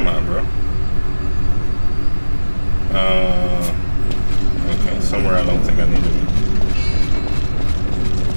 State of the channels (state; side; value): inverted; both; correlation -1.00